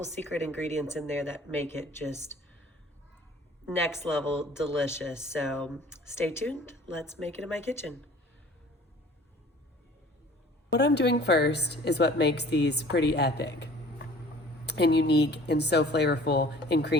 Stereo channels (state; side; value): normal; both; correlation 0.49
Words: secret ingredients in there that make it just next level delicious. So stay tuned, let's make it in my kitchen. What I'm doing first is what makes these pretty epic and unique and so flavorful and